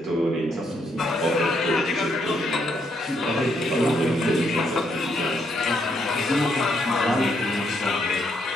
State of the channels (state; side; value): normal; both; correlation 0.75